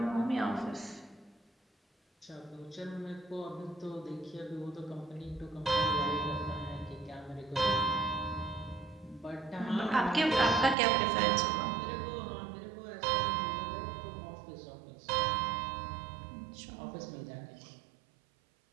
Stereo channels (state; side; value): drops out; left; at 10.8 s